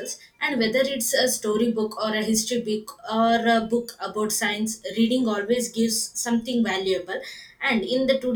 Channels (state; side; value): identical; both; correlation 1.00